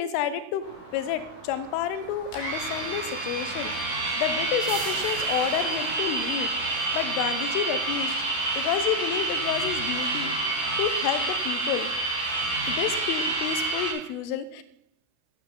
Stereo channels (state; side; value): late; right; 16 ms